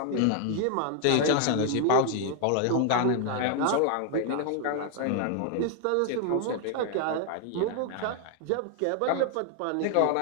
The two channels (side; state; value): both; different; correlation 0.00